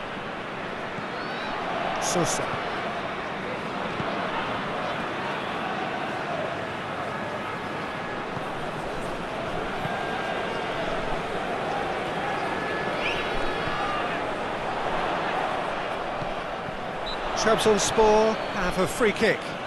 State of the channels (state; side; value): identical; both; correlation 1.00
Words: Sosa. Trabzonspor have a free kick.